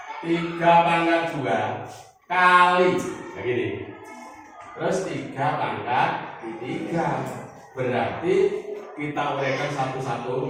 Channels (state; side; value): identical; both; correlation 1.00